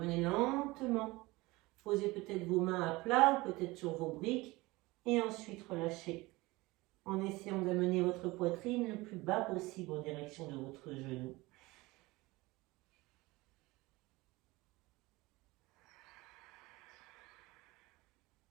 lentement. Posez peut-être vos mains à plat, peut-être sur vos briques. Et ensuite relâchez. En essayant d'amener votre poitrine le plus bas possible en direction de votre genou.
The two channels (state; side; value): quieter; left; 21.4 dB